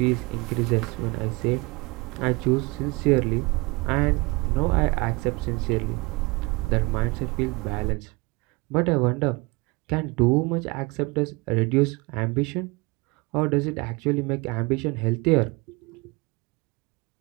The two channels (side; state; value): left; quieter; 25.6 dB